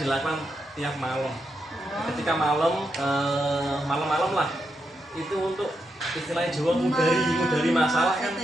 tiap malam. Ketika malam lah itu untuk istilahnya Jawa mengudari masalah kan.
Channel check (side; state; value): both; normal; correlation 0.83